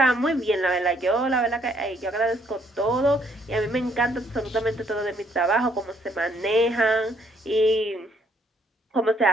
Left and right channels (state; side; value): normal; both; correlation 0.67